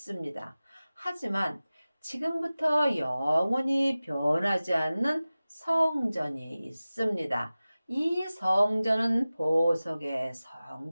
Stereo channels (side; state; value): both; inverted; correlation -0.97